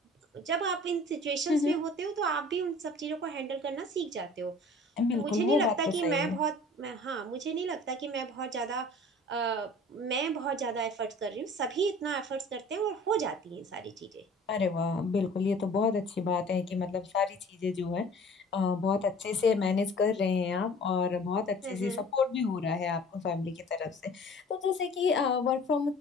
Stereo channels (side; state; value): both; normal; correlation 0.47